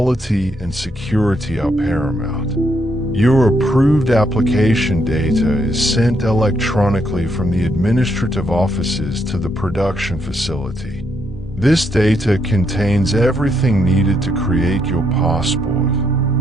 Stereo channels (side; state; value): both; normal; correlation 0.76